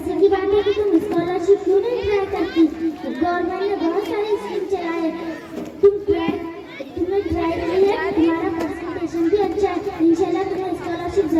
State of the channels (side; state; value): both; identical; correlation 1.00